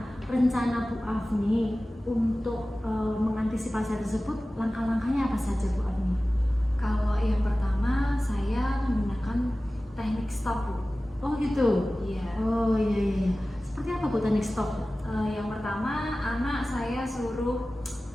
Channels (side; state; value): both; normal; correlation 0.97